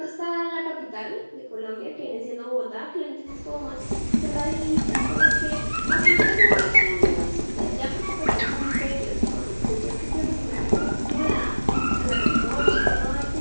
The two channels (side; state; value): both; inverted; correlation -1.00